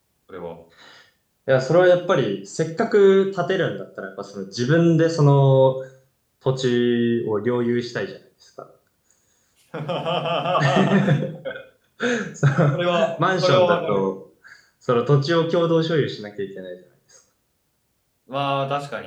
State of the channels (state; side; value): identical; both; correlation 1.00